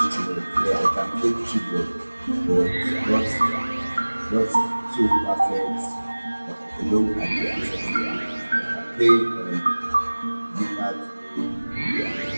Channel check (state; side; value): inverted; both; correlation -1.00